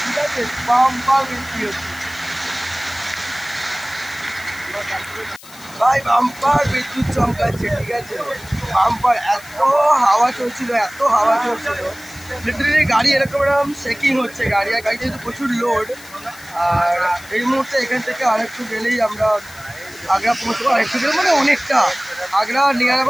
ঠিক আছে। বাম্পার বৃষ্টি হচ্ছে ভাই, বাম্পার বিদ্যুৎ চমকাচ্ছে, ঠিক আছে। বাম্পার এত হাওয়া চলছিল, লিটারেলি গাড়ি এরকম শেকিং হচ্ছে, গাড়িতে যেহেতু প্রচুর লোড। আর এই মুহূর্তে এখান থেকে আরেকটু গেলেই আমরা আগ্রা পৌঁছবো, আরেকটু গেলে মানে অনেকটা, আগ্রা নিয়ার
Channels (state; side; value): noise; left; hiss, 20 dB below the sound